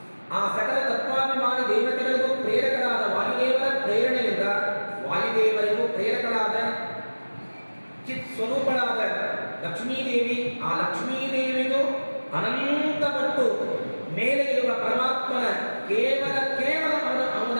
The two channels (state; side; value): inverted; both; correlation -1.00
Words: ಆ ಸಕಲ ತತ್ವಾಭಿಮಾನಿ ದೇವತೆಗಳಿಗೂ ಪ್ರೇರಕರಾದ ವಾಯುದೇವರ ಪ್ರೇರಣೆಯಿಂದ, ವಾಯುದೇವರಿಗೂ ಪ್ರೇರಕರಾದ ಚಿತ್ ಸ್ವರೂಪಳಾದ ಲಕ್ಷ್ಮೀದೇವಿ, ಆ ಲಕ್ಷ್ಮೀದೇವಿಗೂ ಅನಂತಪಟ್ಟು ಮೇಲೆ ಇರುವ ಪರಮಾತ್ಮನ ಕೇವಲ ಅವನ